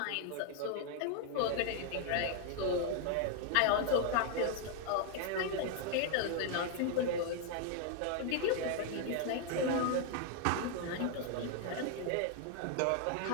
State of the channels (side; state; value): both; different; correlation 0.00